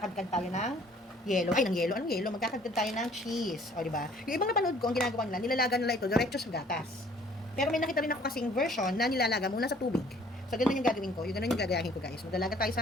tayo ng yelo. Ay, ng yelo. Anong yelo? Magkakadkad tayo ng cheese. O, diba? Yung ibang napanood ko, ang ginagawa nila, nilalaga nila ito diretso sa gatas. Pero may nakita rin ako kasing version na nilalaga muna sa tubig. So ganun yung gagawin ko. Yung ganun yung gagayahin ko guys. Maglalaga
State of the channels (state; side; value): normal; both; correlation 0.57